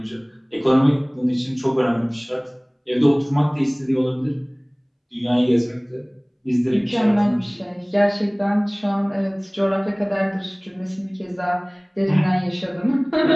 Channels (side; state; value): both; identical; correlation 1.00